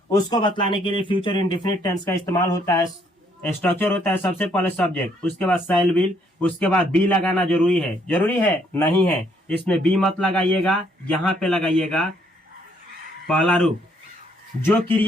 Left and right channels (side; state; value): both; normal; correlation 0.68